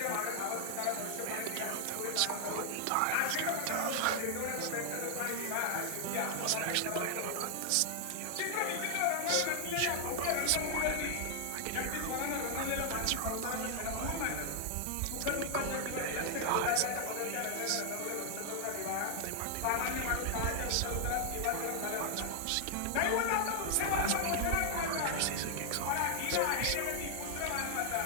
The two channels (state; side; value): different; both; correlation 0.00